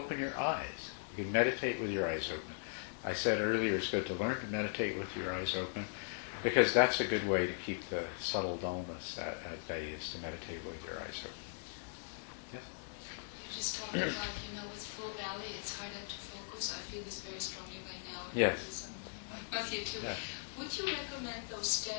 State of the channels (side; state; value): right; silent; digital silence